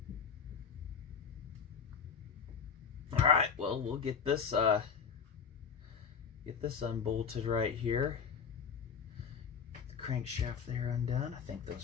Alright, well, we'll get this unbolted right here. The crankshaft there undone. I think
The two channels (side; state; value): right; quieter; 6.5 dB